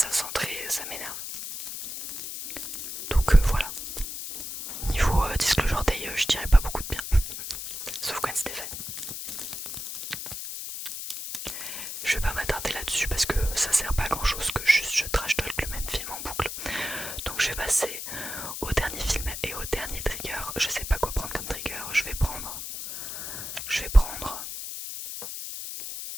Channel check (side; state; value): left; noise; hiss, 7 dB below the sound